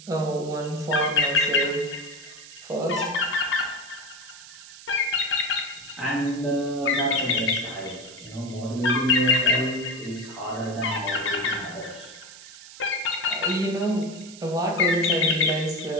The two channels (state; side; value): noise; right; hiss, 17 dB below the sound